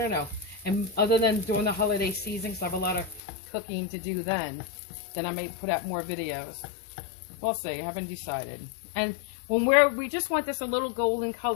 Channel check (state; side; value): drops out; right; at 3.2 s